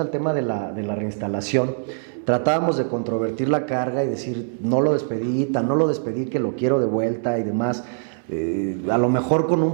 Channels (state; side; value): silent; left; 61 dB below the other